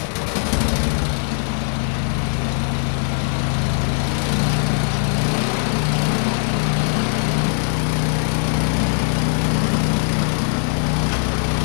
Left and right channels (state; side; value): silent; right; 66 dB below the other